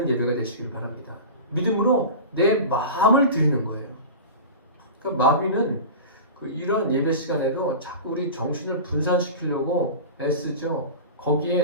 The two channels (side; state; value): both; inverted; correlation -0.31